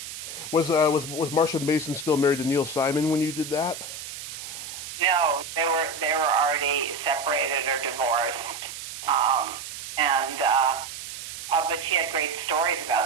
Was Marsha Mason still married to Neil Simon when you did that? No, they were already separated or divorced, but she had great stories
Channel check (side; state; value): right; noise; hiss, 10 dB below the sound